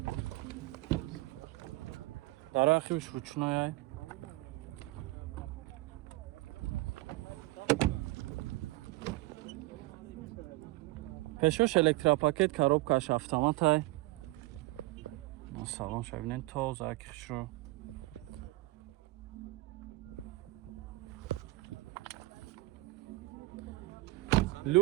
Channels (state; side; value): quieter; left; 20.6 dB